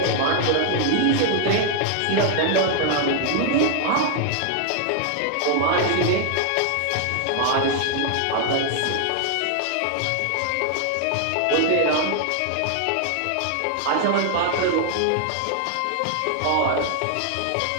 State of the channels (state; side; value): different; both; correlation 0.00